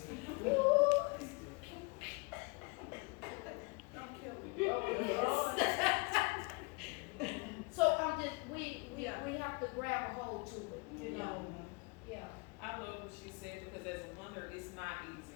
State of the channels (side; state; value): right; quieter; 29.7 dB